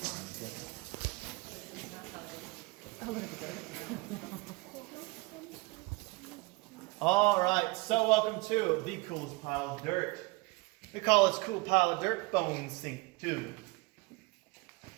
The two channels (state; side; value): quieter; left; 24.9 dB